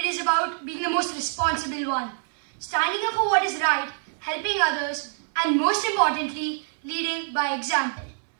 is about being the most responsible one, standing up for what is right, helping others, and most importantly, leading by example.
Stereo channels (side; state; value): left; silent; 61 dB below the other